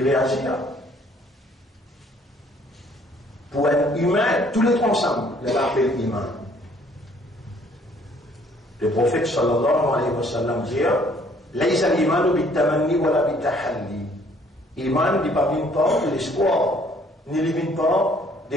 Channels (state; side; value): normal; both; correlation 0.61